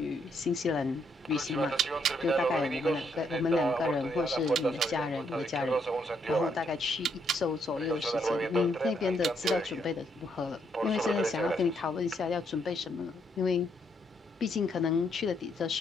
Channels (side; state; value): both; normal; correlation 0.74